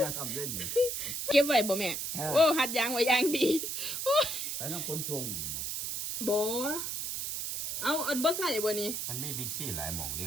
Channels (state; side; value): noise; right; hiss, 3 dB below the sound